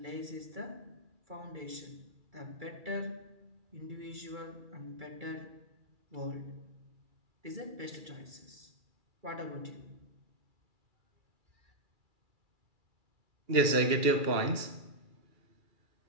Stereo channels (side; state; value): left; late; 2.3 ms